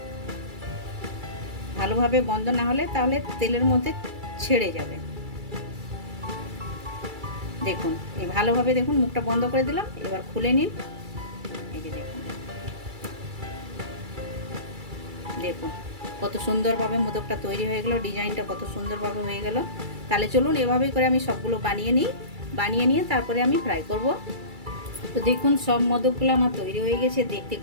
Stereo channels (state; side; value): late; left; 2.3 ms